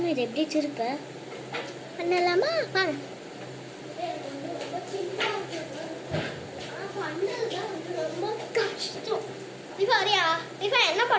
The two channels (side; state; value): both; identical; correlation 1.00